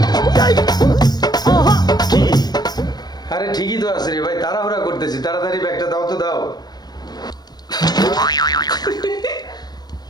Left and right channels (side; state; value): right; late; 0.19 ms